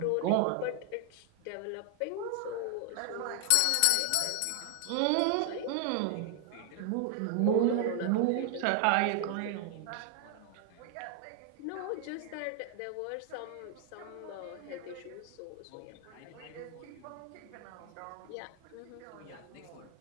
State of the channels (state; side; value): different; both; correlation 0.00